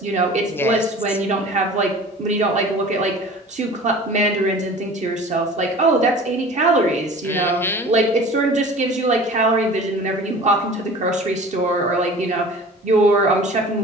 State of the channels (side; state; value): both; normal; correlation 0.42